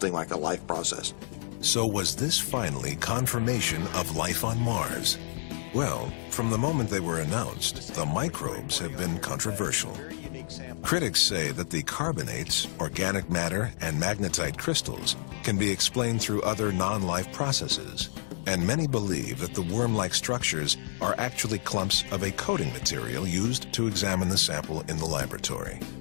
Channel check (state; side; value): silent; right; 58 dB below the other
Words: like a life process. So was this finally confirmation of life on Mars? Well, from the moment they were announced, the microbes have been controversial. Critics say that the carbonates, organic matter, and magnetite crystals can be explained through other non-life processes, and many believe that the worm-like structures are actually clumps of a coating material used to examine the sample in the laboratory.